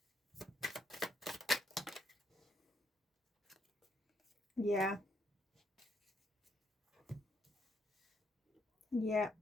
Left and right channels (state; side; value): normal; both; correlation 0.74